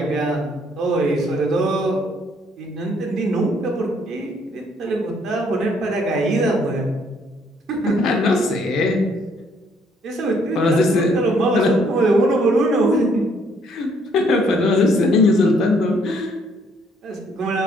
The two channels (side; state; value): both; normal; correlation 0.66